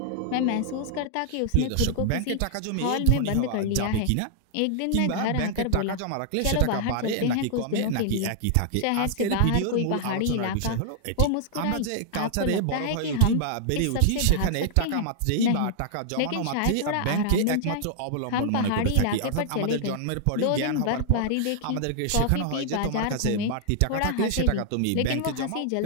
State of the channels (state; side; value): different; both; correlation -0.01